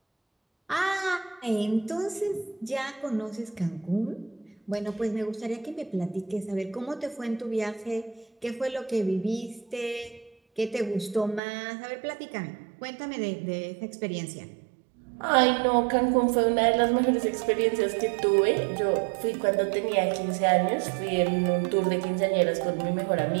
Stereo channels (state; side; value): drops out; left; at 11.4 s